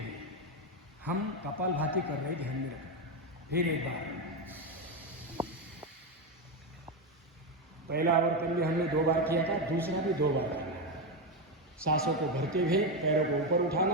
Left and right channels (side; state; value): both; normal; correlation 0.10